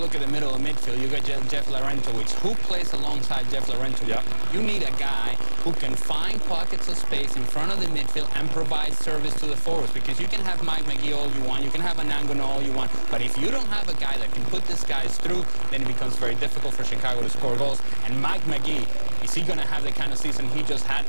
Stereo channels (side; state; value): both; inverted; correlation -1.00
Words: at the middle of midfield, you got Jeff Larentowicz. Who plays alongside Jeff Larentowicz? Yeah. You need a guy who can find pockets of space in front of the midfield and provide service to the forwards, because you can have Mike McGee all you want, you can have Anangono all you want, but if you don't have a guy that can put these guys through, then it becomes very difficult for Chicago to score goals. And Mike McGee, is he going to have the kind of season he just had?